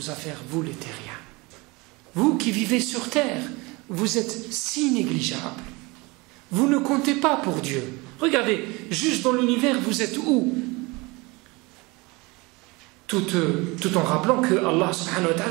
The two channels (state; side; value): quieter; left; 24.9 dB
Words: affaires, vous les terriens. Vous qui vivez sur terre, vous êtes si négligeables. Vous ne comptez pas pour Dieu. Regardez, juste dans l'univers, vous êtes où? Tout en rappelant que Allah subhanahu wa